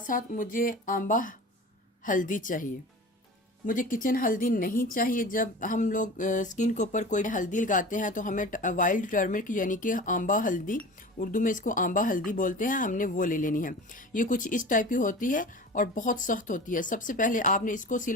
साथ मुझे आंबा हल्दी चाहिए। मुझे किचन हल्दी नहीं चाहिए। जब हम लोग स्किन के ऊपर कोई हल्दी लगाते हैं तो हमें वाइल्ड टर्मरिक यानी कि आंबा हल्दी, उर्दू में इसको आंबा हल्दी बोलते हैं, हमने वो ले लेनी है। ये कुछ इस टाइप की होती है और बहुत सख्त होती है। सबसे पहले आपने इसको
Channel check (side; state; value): both; normal; correlation 0.36